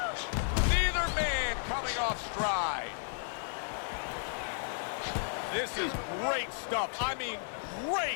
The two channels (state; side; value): silent; right; 55 dB below the other